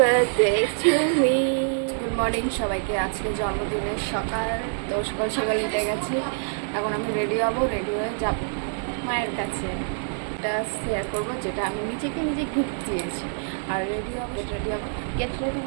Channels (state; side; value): silent; left; 61 dB below the other